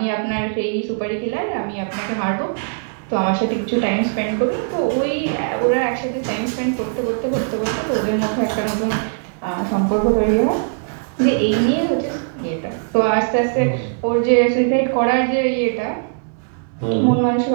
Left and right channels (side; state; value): left; silent; digital silence